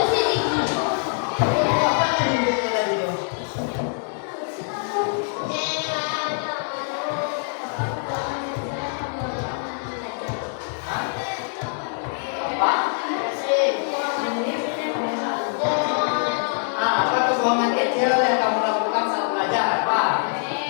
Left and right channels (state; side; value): silent; right; 58 dB below the other